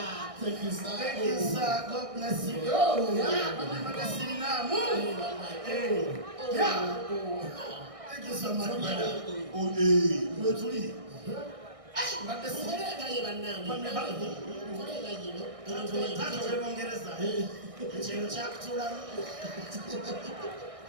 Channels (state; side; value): late; left; 1.6 ms